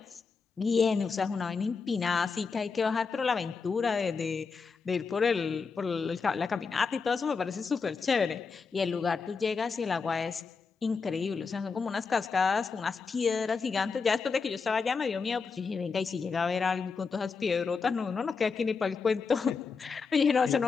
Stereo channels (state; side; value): quieter; right; 5.1 dB